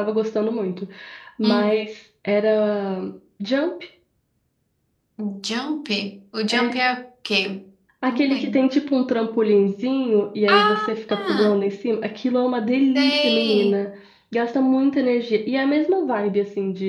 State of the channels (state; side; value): identical; both; correlation 1.00